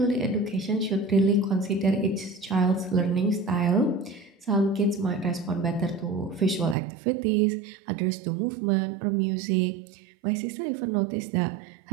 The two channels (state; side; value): drops out; left; at 6.8 s